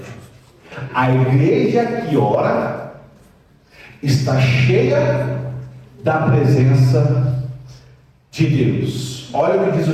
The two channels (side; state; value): both; identical; correlation 1.00